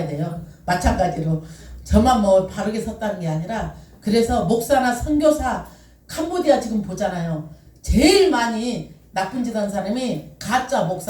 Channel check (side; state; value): both; identical; correlation 1.00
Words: 돼요. 마찬가지로 저만 뭐 바르게 섰다는 게 아니라 그래서 목사나 선교사 캄보디아 지금 보잖아요. 제일 많이 나쁜 짓 한 사람이 가짜